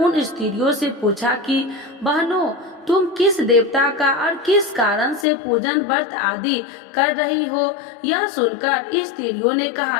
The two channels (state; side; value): drops out; right; at 5.2 s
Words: स्त्रियों से पूछा कि बहनों, तुम किस देवता का और किस कारण से पूजन व्रत आदि कर रही हो? यह सुनकर स्त्रियों ने